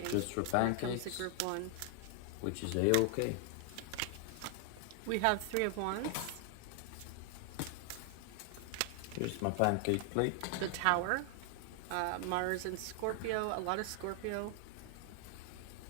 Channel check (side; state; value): both; different; correlation 0.00